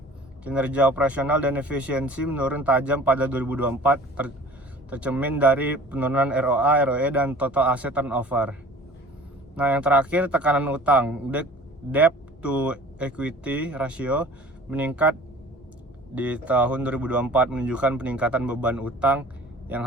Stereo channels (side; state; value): both; normal; correlation 0.45